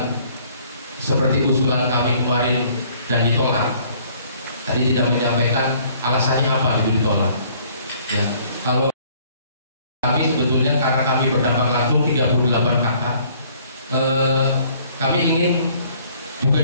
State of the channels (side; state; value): both; inverted; correlation -0.59